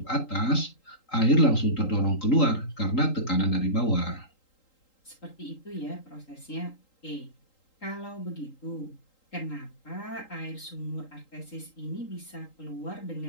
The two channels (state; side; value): late; right; 3.8 ms